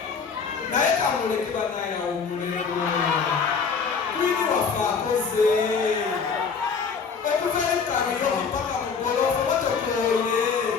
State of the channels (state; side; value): quieter; right; 5.7 dB